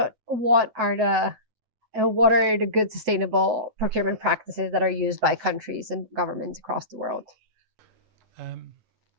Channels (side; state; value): left; late; 9.2 ms